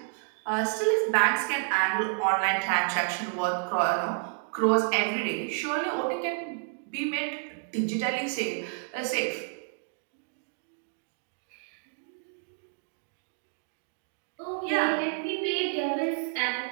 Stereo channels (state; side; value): silent; left; 58 dB below the other